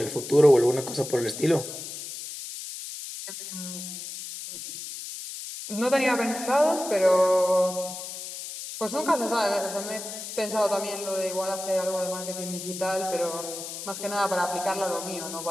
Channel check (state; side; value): noise; left; hiss, 9 dB below the sound